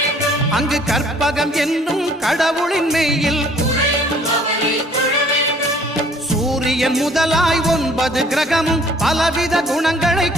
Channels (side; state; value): both; normal; correlation 0.57